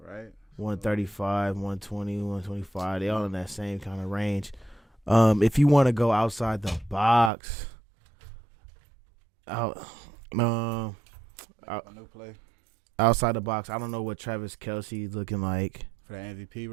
right. 135, 120, 125. They all in that same kind of range. If you want to go outside the box, A new play. outside the box, I don't know what Travis Kelce is looking like. For the MVP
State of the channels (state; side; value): drops out; left; at 7.3 s